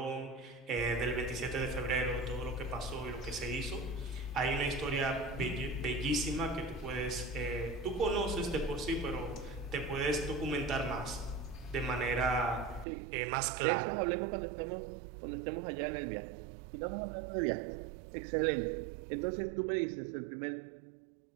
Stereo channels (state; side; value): drops out; left; at 12.9 s